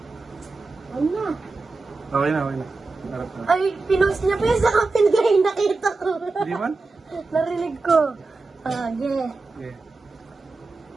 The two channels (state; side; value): quieter; left; 3.7 dB